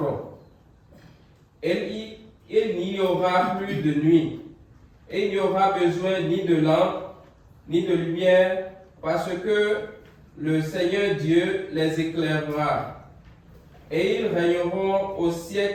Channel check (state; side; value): identical; both; correlation 1.00